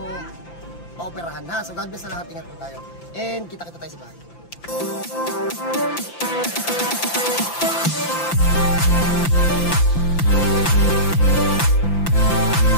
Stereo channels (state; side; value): late; right; 5.9 ms